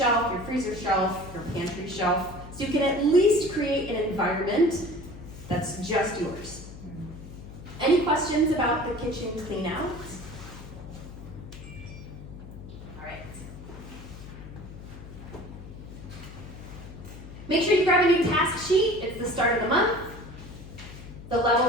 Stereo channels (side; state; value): left; noise; hum, 14 dB below the sound